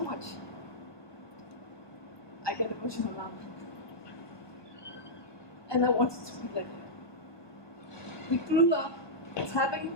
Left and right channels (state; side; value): late; right; 1.2 ms